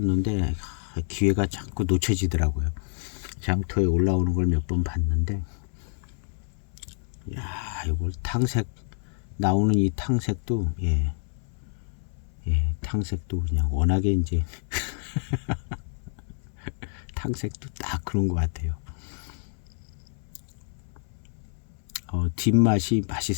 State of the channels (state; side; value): silent; right; 60 dB below the other